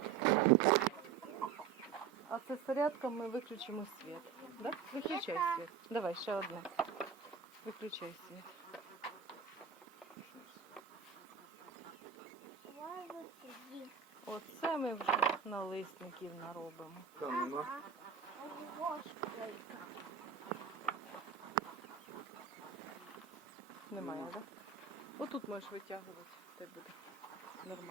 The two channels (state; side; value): quieter; left; 7.0 dB